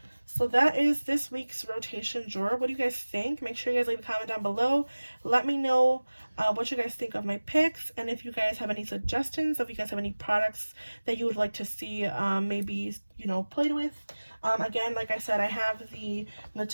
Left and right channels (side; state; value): both; inverted; correlation -1.00